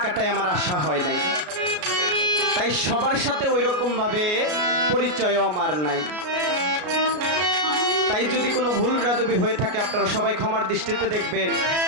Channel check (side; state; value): left; late; 33 ms